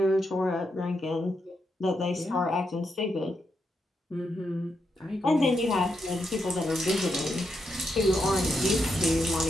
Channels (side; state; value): both; normal; correlation 0.83